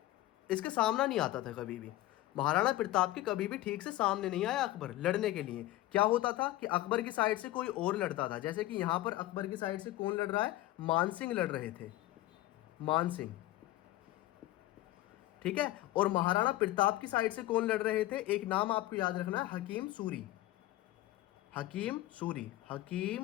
सामना नहीं आता था कभी भी। महाराणा प्रताप के कभी भी ठीक से सामने नहीं आया अकबर लड़ने के लिए। क्या होता था कि अकबर की साइड से कोई और लड़ता था, जैसे कि यहां पर अकबर की साइड से कौन लड़ रहा है? मानसिंह लड़ रहे थे, मानसिंह, ठीक है। और महाराणा प्रताप की साइड से कौन लड़ रहे थे? एक नाम आपको याद रखना है, हकीम सूरी, हकीम सूरी,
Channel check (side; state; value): right; quieter; 16.2 dB